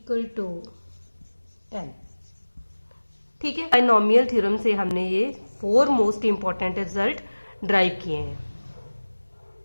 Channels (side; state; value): both; inverted; correlation -1.00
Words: टू n। ठीक है, बाइनोमियल थ्योरम से हमने ये 4 मोस्ट इंपॉर्टेंट रिजल्ट ड्राइव किए हैं।